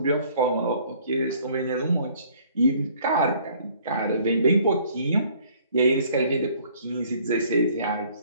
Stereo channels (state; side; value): inverted; both; correlation -0.58